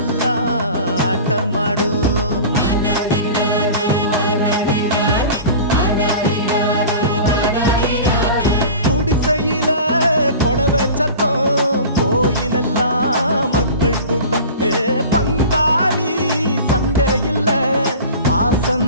ஆட்டமாடும். குடிசையில கொளவ சத்தம், கோயிலெல்லாம் மக்கள் கூட்டம். பங்காளி சண்டை இல்ல,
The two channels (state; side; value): inverted; both; correlation -0.37